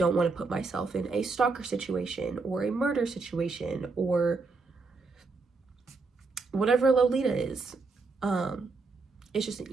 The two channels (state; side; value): quieter; left; 4.1 dB